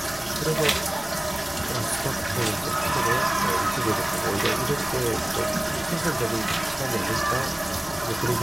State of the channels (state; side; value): noise; left; rumble, 21 dB below the sound